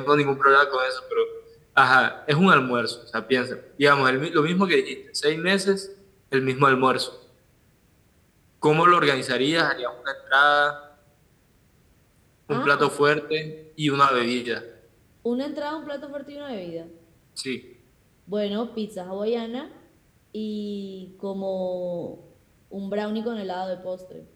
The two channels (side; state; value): both; identical; correlation 1.00